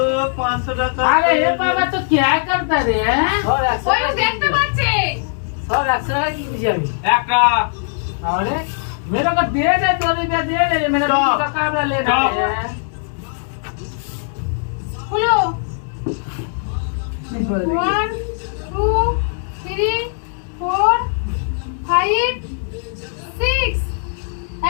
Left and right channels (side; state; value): right; silent; 66 dB below the other